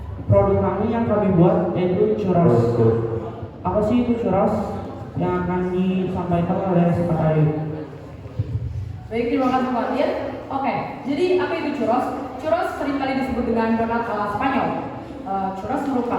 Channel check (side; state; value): both; identical; correlation 1.00